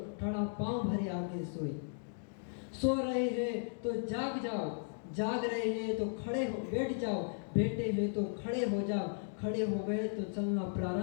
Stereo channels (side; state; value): right; silent; digital silence